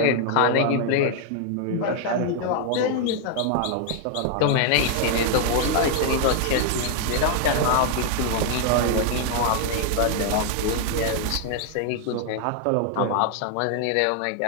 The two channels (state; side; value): different; both; correlation 0.00